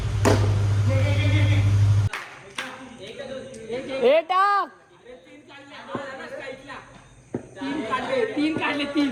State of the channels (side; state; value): both; identical; correlation 1.00